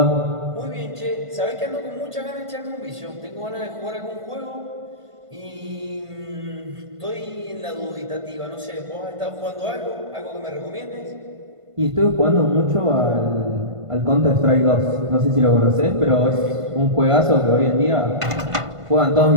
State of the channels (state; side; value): late; left; 1.5 ms